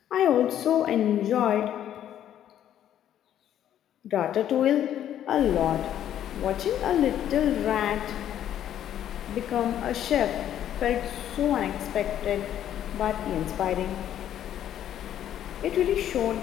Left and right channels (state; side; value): quieter; right; 10.8 dB